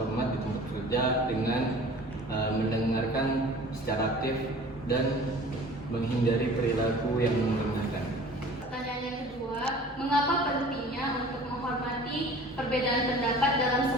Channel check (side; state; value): both; normal; correlation 0.45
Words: di tempat kerja dengan mendengarkan secara aktif dan menghindari perilaku yang merendahkan. Pertanyaan yang kedua, mengapa pentingnya untuk menghormati perbedaan pendapat dalam